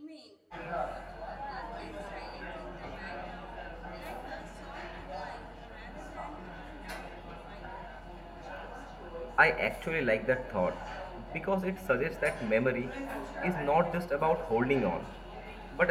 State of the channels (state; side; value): identical; both; correlation 1.00